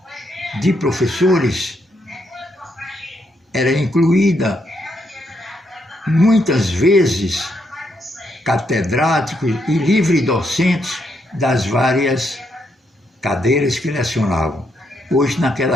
de professores era incluída muitas vezes catedráticos e livre-docentes das várias cadeiras que lecionavam. Pois,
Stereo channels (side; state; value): both; normal; correlation 0.77